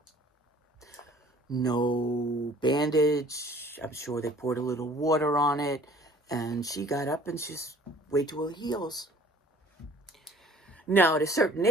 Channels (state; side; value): normal; both; correlation 0.53